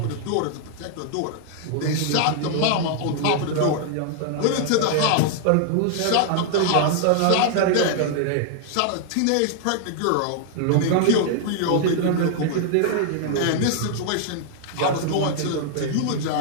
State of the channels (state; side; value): different; both; correlation 0.00